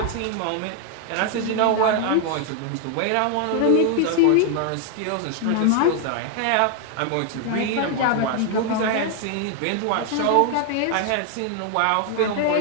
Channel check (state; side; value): different; both; correlation 0.00